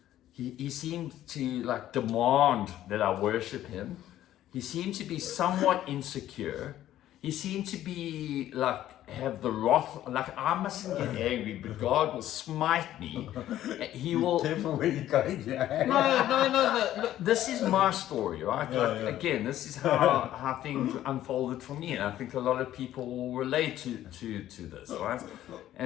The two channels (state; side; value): quieter; right; 12.8 dB